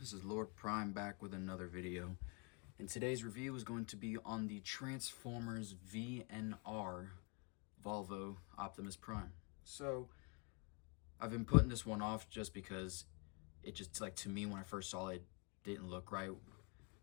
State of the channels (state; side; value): quieter; right; 32.8 dB